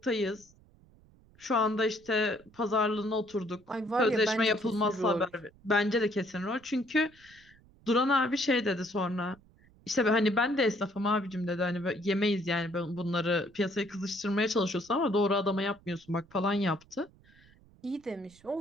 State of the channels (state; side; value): noise; right; rumble, 28 dB below the sound